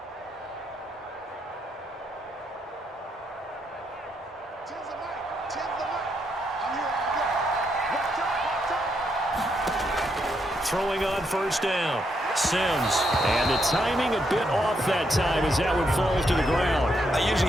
Throwing on 1st down, Sims. And the timing a bit off that time as that one falls to the ground. I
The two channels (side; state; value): both; normal; correlation 0.78